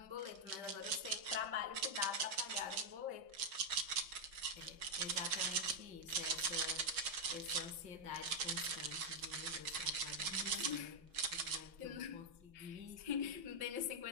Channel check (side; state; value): left; late; 5.8 ms